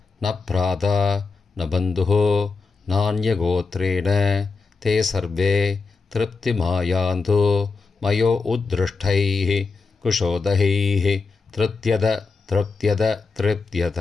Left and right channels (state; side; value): quieter; right; 4.5 dB